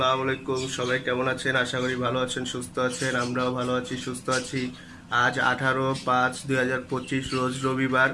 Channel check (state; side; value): identical; both; correlation 1.00